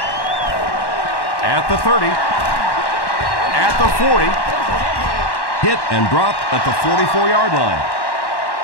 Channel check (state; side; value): late; right; 1.1 ms